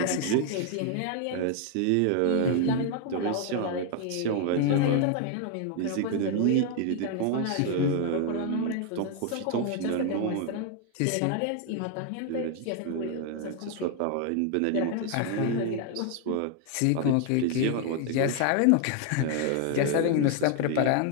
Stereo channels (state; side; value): different; both; correlation 0.00